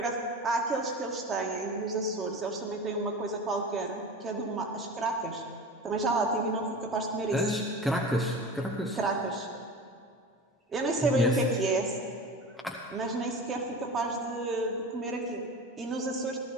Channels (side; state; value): both; normal; correlation 0.32